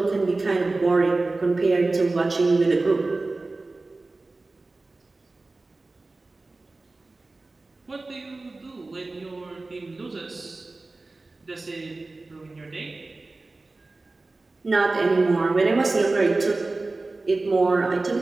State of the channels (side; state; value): left; quieter; 3.3 dB